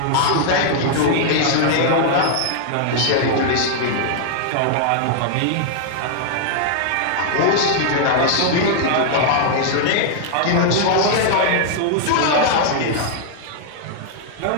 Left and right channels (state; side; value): different; both; correlation -0.01